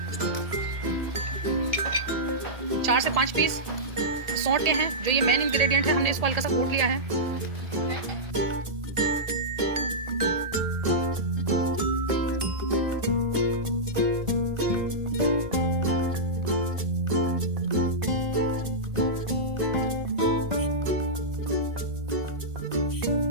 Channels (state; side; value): late; left; 1.8 ms